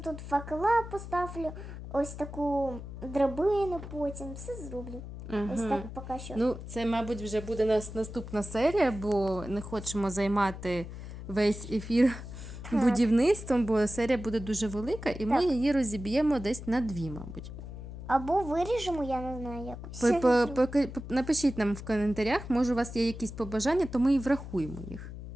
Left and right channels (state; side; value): noise; left; hum, 10 dB below the sound